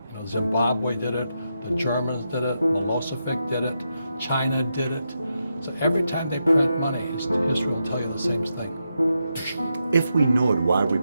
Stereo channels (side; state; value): both; inverted; correlation -0.85